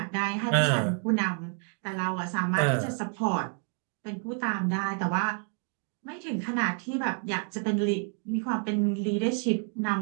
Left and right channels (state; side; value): quieter; left; 39.8 dB